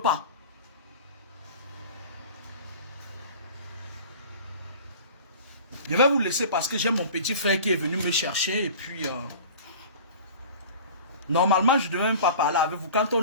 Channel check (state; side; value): inverted; both; correlation -0.40